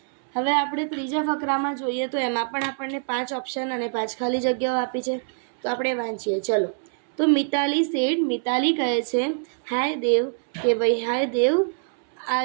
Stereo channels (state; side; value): silent; left; 62 dB below the other